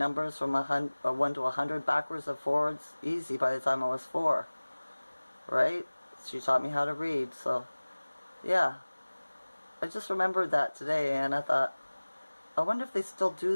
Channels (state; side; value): inverted; both; correlation -1.00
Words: from 1 to 100 backwards and forwards, easy by the time I was 4. Right? She taught me how to read, so yeah. I just remembered that today, and I thought, I wonder if they still